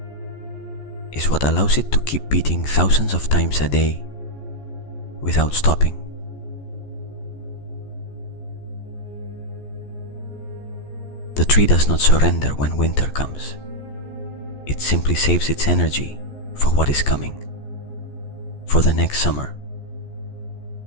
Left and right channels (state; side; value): late; right; 14 ms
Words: is what allows it to keep beating thousands of times a day without stopping. The tree does not surrender when winter comes. It simply saves its energy for what is coming, for the next summer,